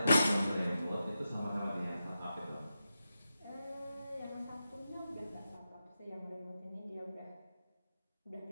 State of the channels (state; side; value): inverted; both; correlation -0.89